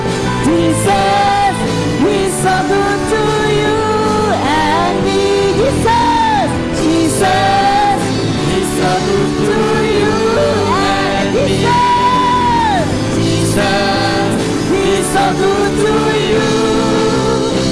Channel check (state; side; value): identical; both; correlation 1.00